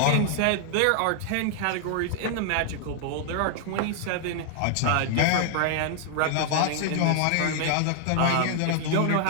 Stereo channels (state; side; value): different; both; correlation 0.00